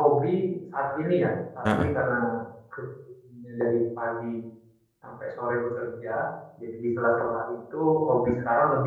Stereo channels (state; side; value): identical; both; correlation 1.00